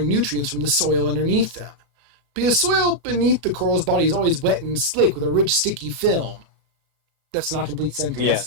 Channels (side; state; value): left; late; 35 ms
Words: nutrients from the soil underneath them. Because soil beneath the coral's body is always wet and slick with a rich, sticky film. That's not a complete